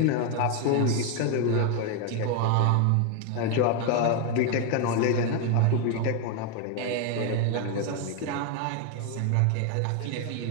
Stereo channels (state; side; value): different; both; correlation 0.01